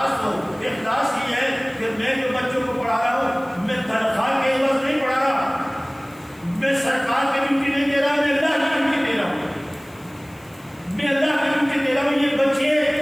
ہو. اخلاص یہ ہے کہ میں جو بچوں کو پڑھا رہا ہوں میں تنخواہ کے عوض نہیں پڑھا رہا, میں سرکار کی ڈیوٹی نہیں دے رہا, میں اللہ کی ڈیوٹی دے رہا ہوں. میں اللہ کی ڈیوٹی دے رہا ہوں. یہ بچے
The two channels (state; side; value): noise; left; hiss, 27 dB below the sound